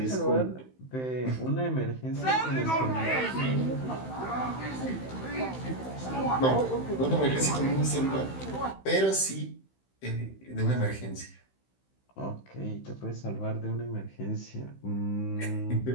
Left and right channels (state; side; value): late; right; 16 ms